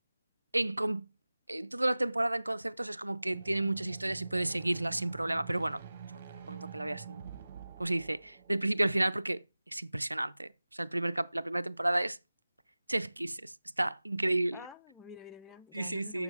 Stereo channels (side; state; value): both; inverted; correlation -0.98